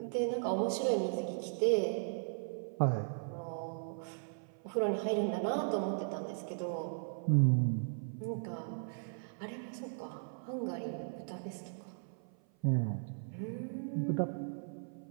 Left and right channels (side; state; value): left; silent; 53 dB below the other